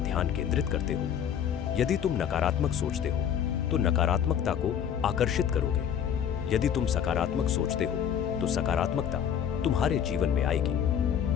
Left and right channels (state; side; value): quieter; right; 8.8 dB